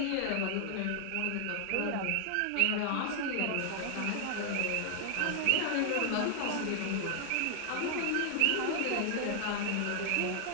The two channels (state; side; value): different; both; correlation 0.00